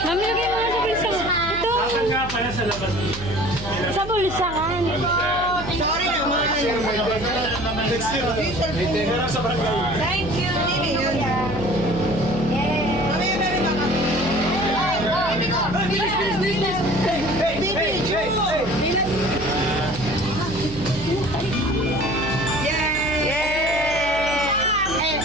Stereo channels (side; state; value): right; noise; hum, 11 dB below the sound